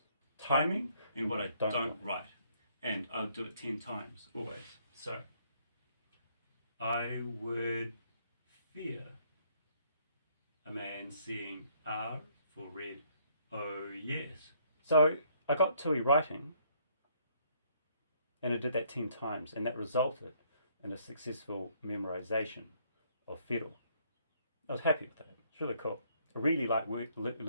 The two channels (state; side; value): inverted; both; correlation -0.67